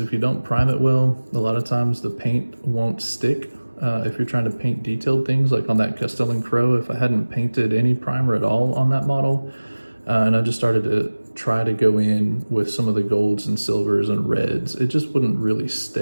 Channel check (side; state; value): both; inverted; correlation -1.00